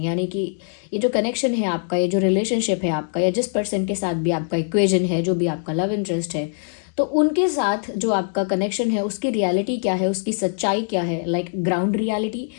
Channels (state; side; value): silent; right; digital silence